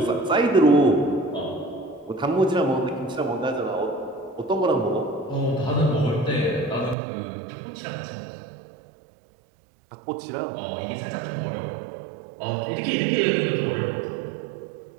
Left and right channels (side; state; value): left; drops out; at 7.0 s